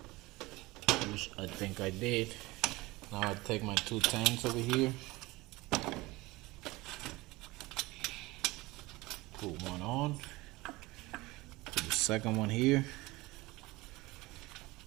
which I think I did. Now I take my 210s over here, put one on, put the second one here,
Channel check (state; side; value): quieter; left; 21.1 dB